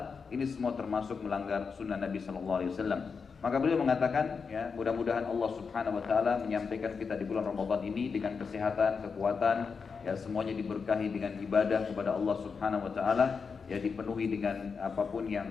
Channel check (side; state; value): right; quieter; 5.4 dB